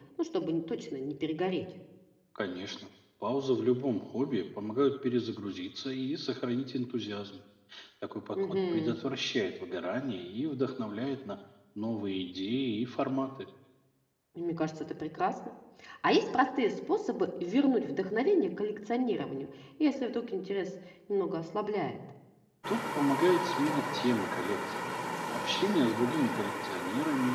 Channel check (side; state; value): both; identical; correlation 1.00